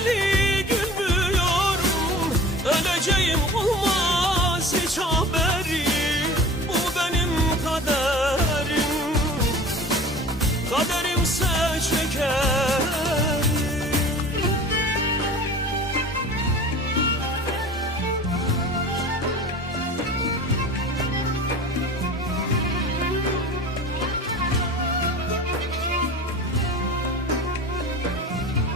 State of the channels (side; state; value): both; normal; correlation 0.40